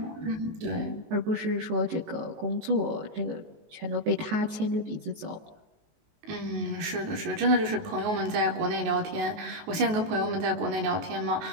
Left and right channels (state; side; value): late; left; 19 ms